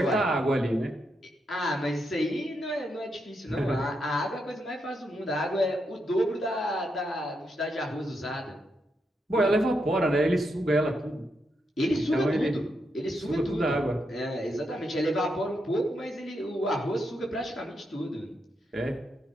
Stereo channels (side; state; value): both; normal; correlation 0.82